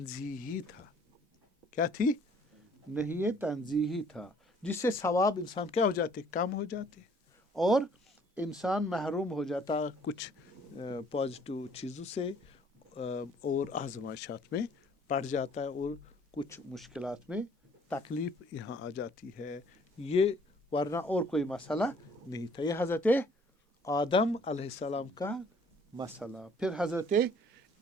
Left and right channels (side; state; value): both; normal; correlation 0.58